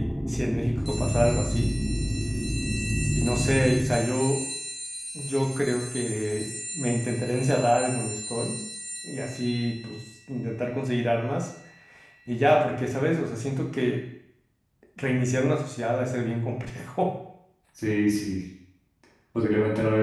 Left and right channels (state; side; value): identical; both; correlation 1.00